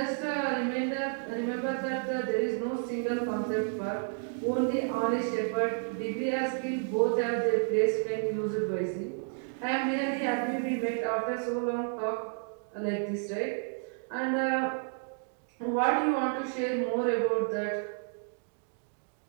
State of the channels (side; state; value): left; silent; 57 dB below the other